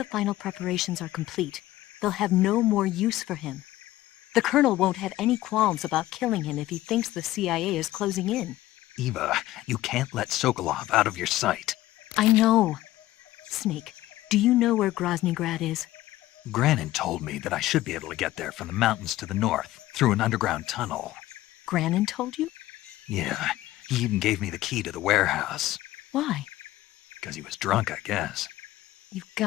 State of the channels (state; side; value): quieter; right; 15.8 dB